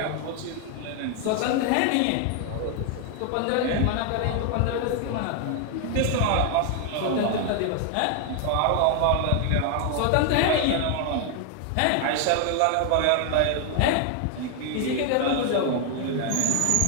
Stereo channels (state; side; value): different; both; correlation 0.00